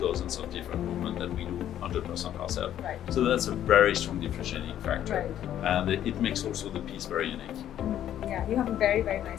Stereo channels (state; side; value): quieter; right; 11.1 dB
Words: different movements that we do 100% ourselves. Right. So that's a very strong differentiating factor, right. And it makes also the piece very unique. Yeah, you have a very, very